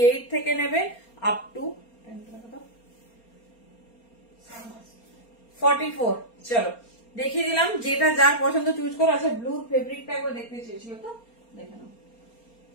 থেকে নেবে আপ টু 44। চলো দেখিয়ে দিলাম, যেটা যার পছন্দ চুজ করো। আচ্ছা ব্লুর ফেব্রিকটা একবার দেখতে চেয়েছিল তো, দেখে নাও।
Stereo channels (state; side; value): late; right; 4.3 ms